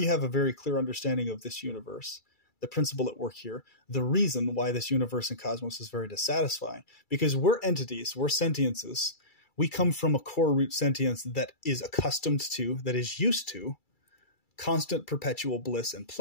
have a very clear understanding of this universe, the principle at work here, the reason why this universe and cosmos is very dissatisfying. Because we're entities, we're sentiences. We come from a core root sentience that is accustomed to, that is used to, constant perpetual bliss and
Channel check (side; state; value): right; late; 2.3 ms